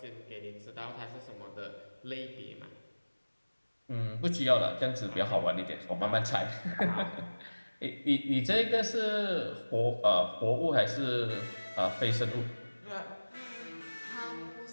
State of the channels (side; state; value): both; inverted; correlation -1.00